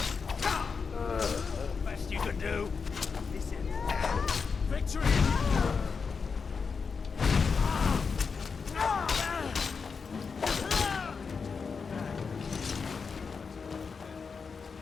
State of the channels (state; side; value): quieter; right; 5.3 dB